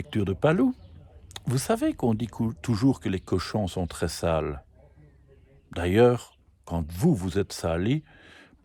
de Palou. Vous savez qu'on dit toujours que les cochons sont très sales. D'ailleurs, quand vous êtes sali,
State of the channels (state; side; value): identical; both; correlation 1.00